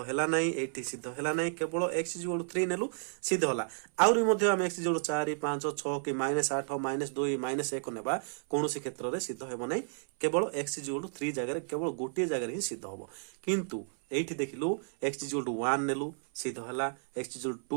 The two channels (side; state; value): left; silent; 56 dB below the other